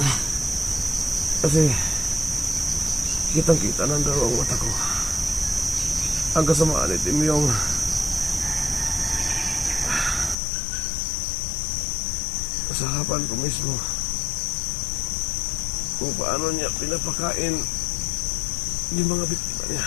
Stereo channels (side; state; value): right; drops out; at 10.4 s